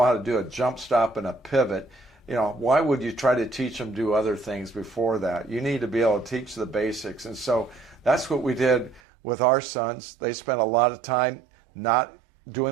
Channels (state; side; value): drops out; left; at 9.0 s